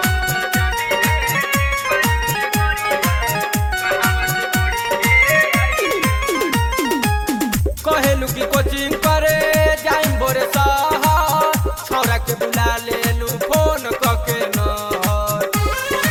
कहेलू की कोचिंग करे जाइम बोरे शहर, छौरा के बुला लेलू फोन कके नहर।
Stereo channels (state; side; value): identical; both; correlation 1.00